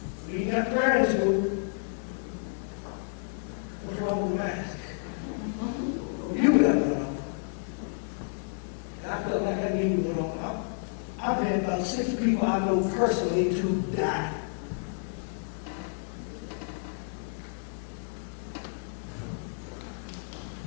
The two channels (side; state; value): right; silent; digital silence